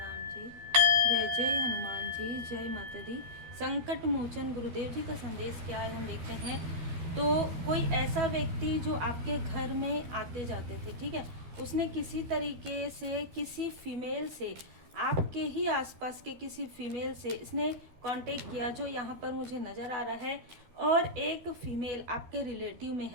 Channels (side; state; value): left; late; 12 ms